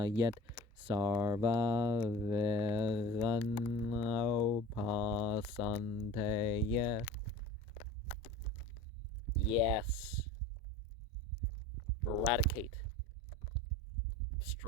Sarva Veganopasanteya. Yes. Eradicate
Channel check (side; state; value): both; normal; correlation 0.38